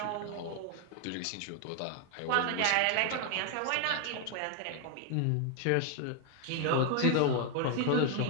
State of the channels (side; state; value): both; different; correlation 0.00